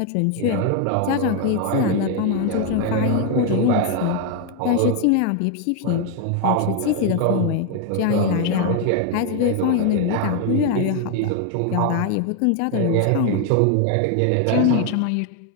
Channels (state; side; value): different; both; correlation 0.01